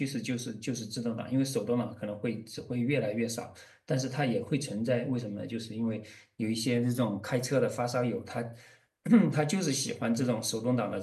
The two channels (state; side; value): identical; both; correlation 1.00